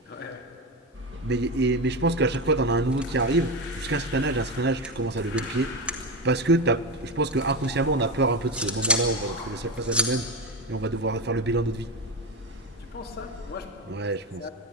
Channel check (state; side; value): normal; both; correlation 0.17